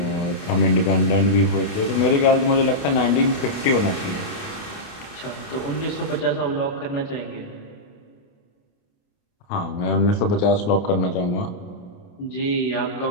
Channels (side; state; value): right; late; 28 ms